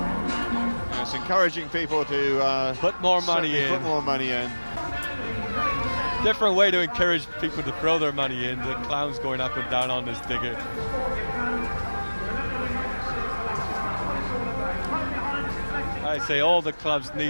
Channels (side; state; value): both; inverted; correlation -1.00